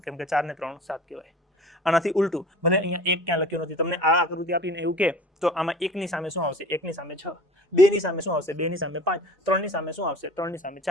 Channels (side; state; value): both; normal; correlation 0.43